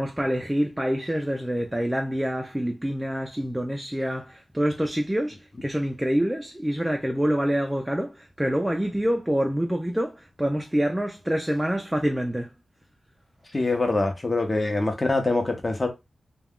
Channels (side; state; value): both; normal; correlation 0.97